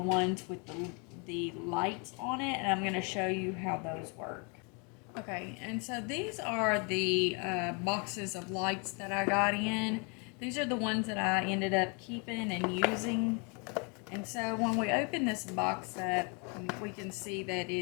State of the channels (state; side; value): quieter; right; 34.3 dB